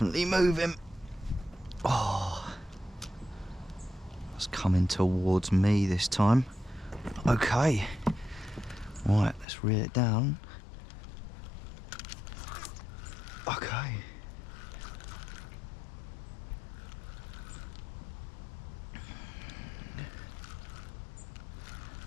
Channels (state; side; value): drops out; right; at 9.5 s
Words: moving. Oh, it's coming towards me this time. Okay, right, let's reel it down. Okay.